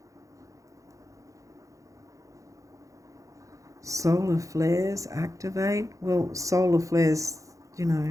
Solar flares activate. Well, solar flares,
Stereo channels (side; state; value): left; late; 0.16 ms